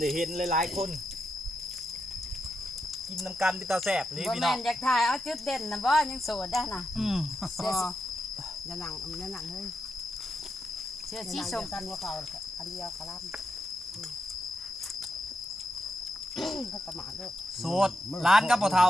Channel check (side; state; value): both; normal; correlation 0.85